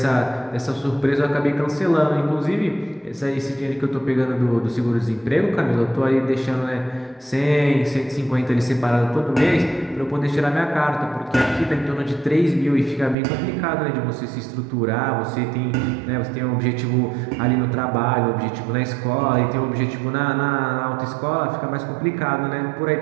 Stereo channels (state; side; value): drops out; left; at 13.2 s